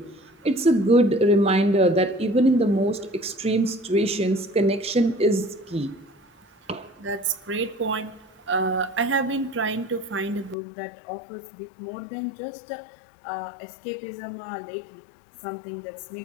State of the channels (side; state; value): right; drops out; at 10.6 s